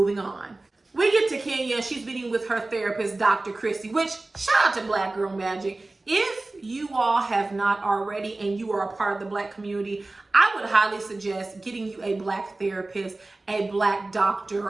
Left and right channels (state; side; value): quieter; left; 3.1 dB